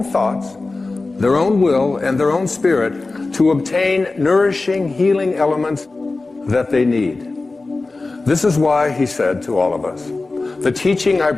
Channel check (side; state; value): right; quieter; 3.5 dB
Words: thoughts, their own will, and their own spirit to obtain nourishing, healing elements that they need. This is why he said to all of us, the teaching I